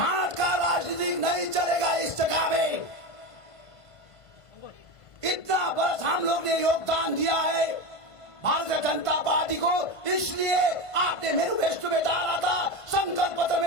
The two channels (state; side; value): late; right; 1.5 ms